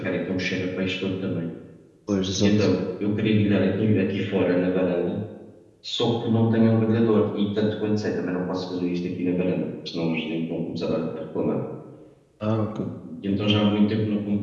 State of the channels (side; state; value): both; identical; correlation 1.00